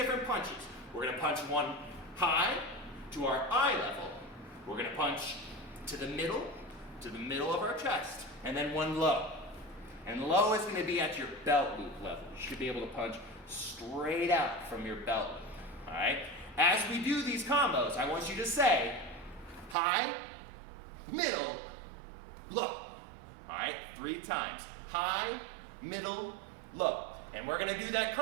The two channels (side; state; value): left; drops out; at 19.8 s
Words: punches. We're gonna punch one high to our eye level. We're gonna punch to the middle of our chest, and then one low. And low is gonna be at your belt loop level. You should be able to punch straight out from your belt loop, all right? As we do these combos, I want you to say high, middle, low. All right, 3 times. High, middle, low. And we're gonna do that